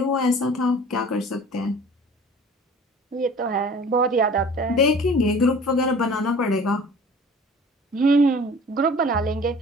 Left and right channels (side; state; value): both; normal; correlation 0.45